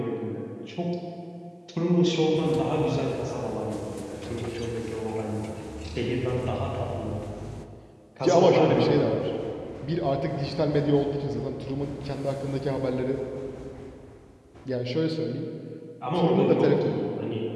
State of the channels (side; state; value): both; identical; correlation 1.00